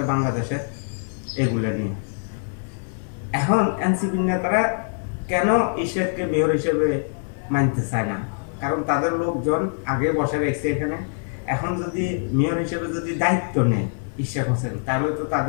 বাংলাদেশের, এগুলো নিয়ে। এখন এনসিপির নেতারা কেন ইশরাককে মেয়র হিসেবে মানতে চায় না? কারণ তাদের লোকজন আগে বসে রেখেছে এখানে। এখন যদি মেয়র হিসেবে যদি দায়িত্ব নেয় ইশরাক হোসেন, তাহলে তো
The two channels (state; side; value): silent; right; 55 dB below the other